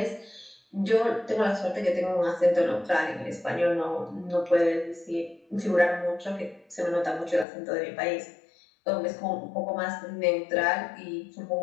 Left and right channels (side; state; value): right; drops out; at 7.5 s